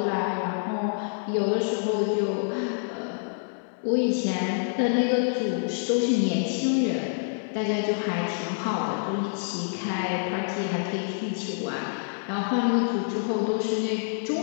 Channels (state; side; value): silent; right; 60 dB below the other